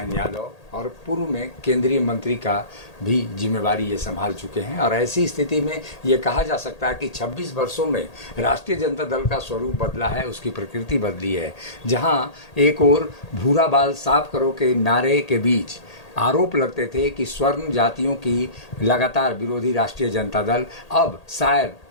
यादव। और पूर्व में केंद्रीय मंत्री का भी जिम्मेवारी ये संभाल चुके हैं। और ऐसी स्थिति में ये कहा जा सकता है कि 26 वर्षों में राष्ट्रीय जनता दल का स्वरूप बदला है, उसकी प्रकृति बदली है। जहां एक ओर भूरा बाल साफ करो के नारे के बीच आरोप लगते थे कि स्वर्ण जातियों की लगातार विरोधी राष्ट्रीय जनता दल, अब शायद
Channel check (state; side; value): late; right; 1.8 ms